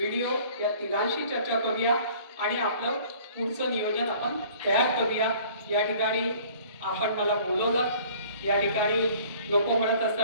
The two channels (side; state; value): both; inverted; correlation -0.51